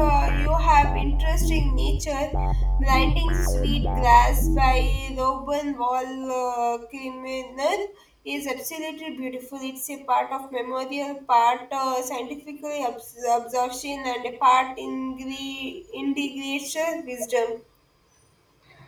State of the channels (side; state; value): both; identical; correlation 1.00